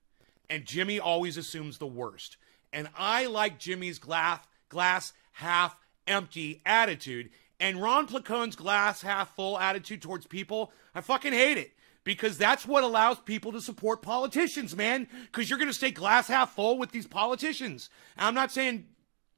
And Jimmy always assumes the worst. And I like Jimmy's glass half empty attitude. And Ron Placone's glass half full attitude towards people, I fucking hate it. Because that's what allows people to support politicians, man. Because you're going to stay glass half full with these politicians. And I'm not saying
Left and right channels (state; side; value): silent; left; digital silence